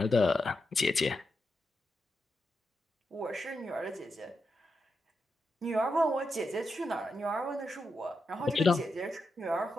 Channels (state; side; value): normal; both; correlation 0.86